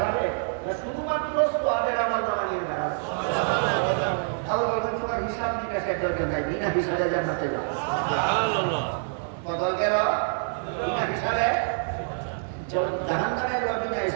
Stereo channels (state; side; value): silent; left; digital silence